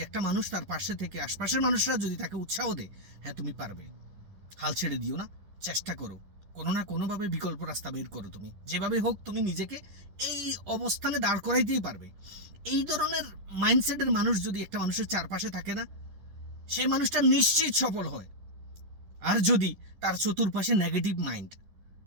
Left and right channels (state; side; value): late; left; 10 ms